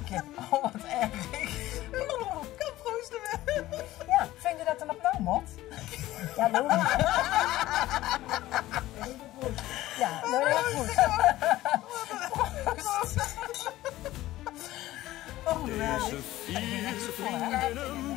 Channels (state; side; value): quieter; right; 15.9 dB